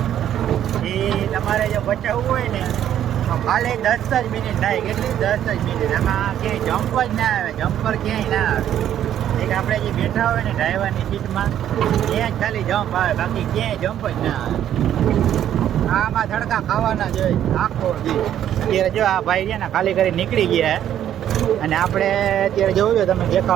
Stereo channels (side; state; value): left; quieter; 10.8 dB